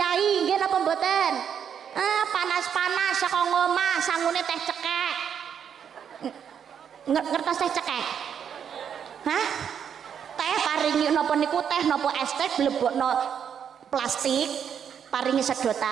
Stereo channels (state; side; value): quieter; left; 8.1 dB